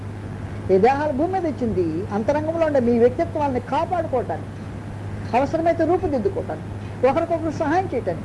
ఈ దేహాలు భూమి మీద ఇచ్చింది అంతరంగంలో ఉండే మీ వ్యక్తిత్వాన్ని కాపాడుకోవటానికి, అవసరమైతే రూపుదిద్దుకోవటానికి, ఒకరికొకరు సహాయం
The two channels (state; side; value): identical; both; correlation 1.00